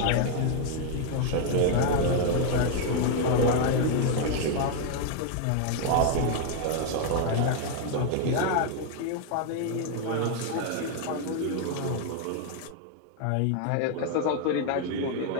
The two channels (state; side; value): different; both; correlation 0.00